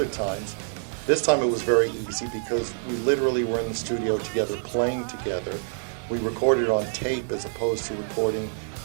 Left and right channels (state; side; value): silent; left; digital silence